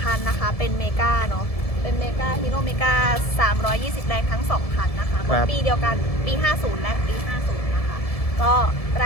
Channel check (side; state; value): right; late; 1.7 ms